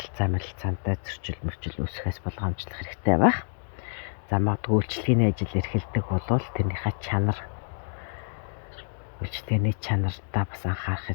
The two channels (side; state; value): right; silent; digital silence